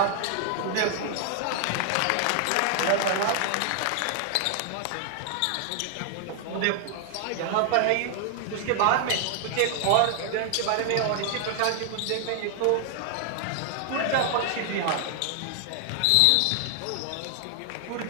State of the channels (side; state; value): both; different; correlation 0.00